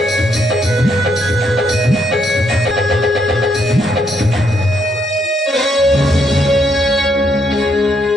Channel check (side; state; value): both; normal; correlation 0.75